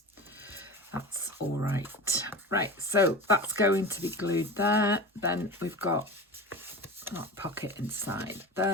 That's all right. Right, so that's going to be glued there. Then we've got that pocket inside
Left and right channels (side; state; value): both; normal; correlation 0.30